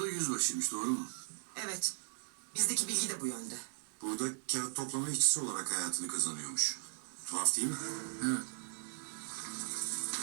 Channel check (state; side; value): silent; left; digital silence